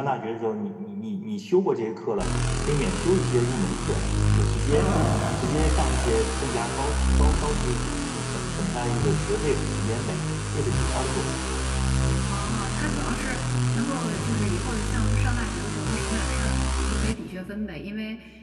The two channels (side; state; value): both; identical; correlation 1.00